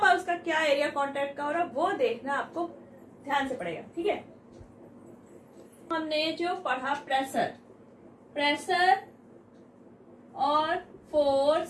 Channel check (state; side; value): identical; both; correlation 1.00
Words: उसका क्या एरिया कांटेक्ट का हो रहा है वो देखना आपको ध्यान से पड़ेगा। ठीक है, हमने जो पढ़ा प्रेशर और